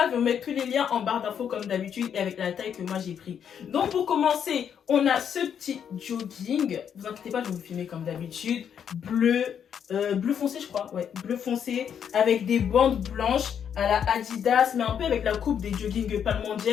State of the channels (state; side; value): quieter; right; 8.2 dB